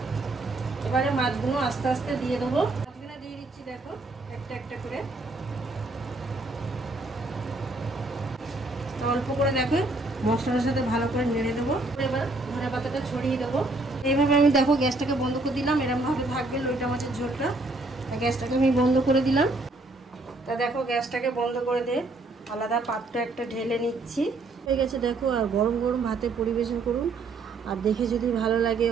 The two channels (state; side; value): quieter; left; 3.1 dB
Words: এবারে মাছগুলো আস্তে আস্তে দিয়ে দেবো। মাছগুলো দিয়ে দিচ্ছি দেখো একটা একটা করে, অল্প করে দেখো মশলার সাথে ভালো করে নেড়ে দেবো। এবার ধনে পাতাটা ছড়িয়ে দেবো। এইভাবে আমি দেখো গ্যাসটাকে বন্ধ করে দিলাম। এরকমভাবে থাকবে লইটা মাছের ঝোলটা। গ্যাসটাকে আমি বন্ধ করে দিলাম। তা দেখো গ্যাসটাকে বন্ধ করে দিয়ে আলাদা পাত্র একটা ঢেলে নিচ্ছি। হয়ে গেছে দেখো। আর গরম গরম ভাতে পরিবেশন করুন। আর দেখে যদি ভালো লাগে